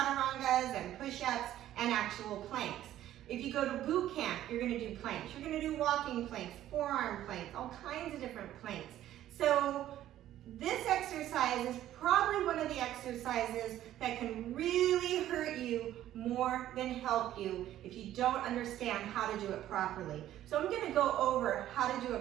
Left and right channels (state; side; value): quieter; left; 12.8 dB